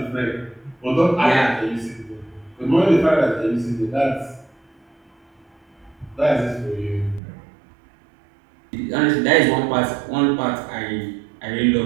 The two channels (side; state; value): left; drops out; at 7.2 s